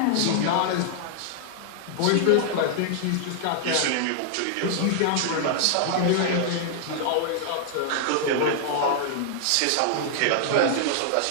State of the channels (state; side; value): different; both; correlation -0.01